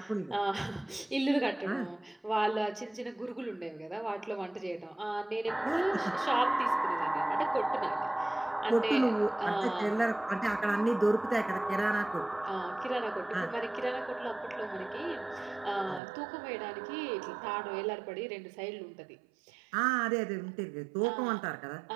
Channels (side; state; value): left; drops out; at 16.0 s